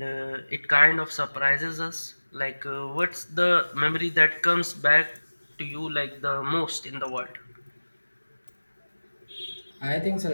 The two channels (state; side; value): inverted; both; correlation -1.00